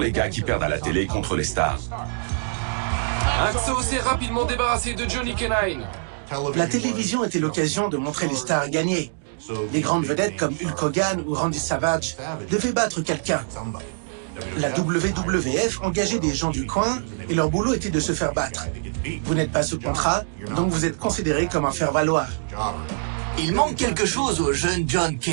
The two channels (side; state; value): left; silent; digital silence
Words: gars qui perdent à la télé contre les stars. Axo s'est rapidement débarrassé de Johnny K-9. La télévision était l'occasion de montrer les stars gagner. Les grandes vedettes comme Hulk Hogan ou Randy Savage devaient battre quelqu'un. La WWF engageait des gens du coin et leur boulot était de se faire battre. Vous n'êtes pas sous contrat, donc vous êtes considéré comme un faire-valoir. Il manque quelque chose au jeune John